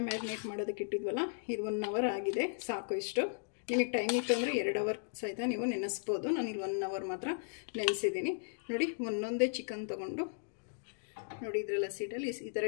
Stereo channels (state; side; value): silent; right; digital silence